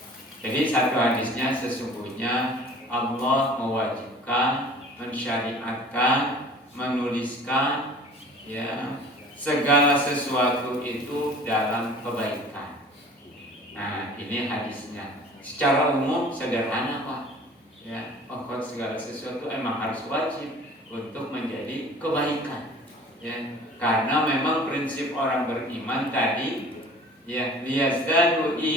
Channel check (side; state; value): both; normal; correlation 0.46